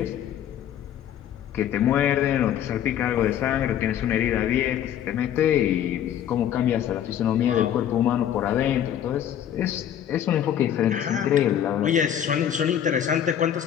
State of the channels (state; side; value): quieter; right; 10.1 dB